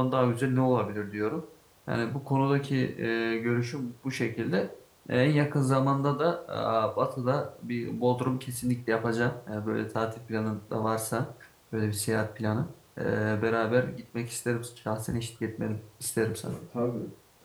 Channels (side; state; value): both; identical; correlation 1.00